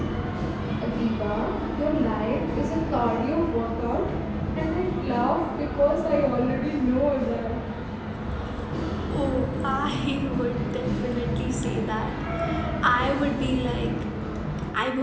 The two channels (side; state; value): both; identical; correlation 1.00